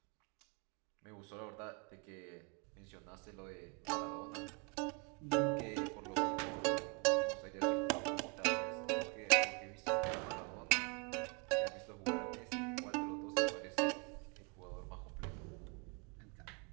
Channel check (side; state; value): left; quieter; 31.8 dB